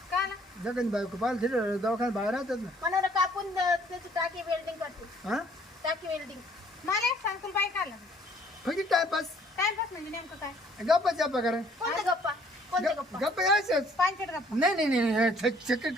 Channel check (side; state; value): both; normal; correlation 0.60